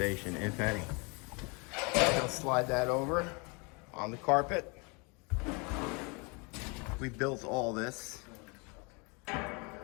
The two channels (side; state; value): right; quieter; 30.9 dB